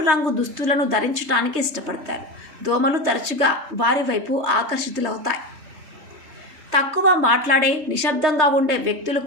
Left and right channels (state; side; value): late; left; 3.3 ms